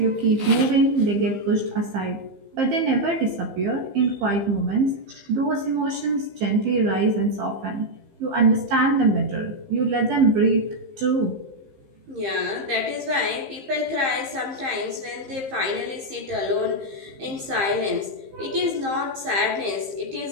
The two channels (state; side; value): late; left; 15 ms